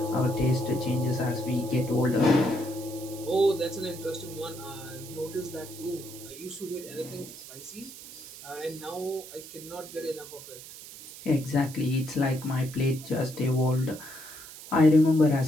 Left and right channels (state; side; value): noise; right; hiss, 15 dB below the sound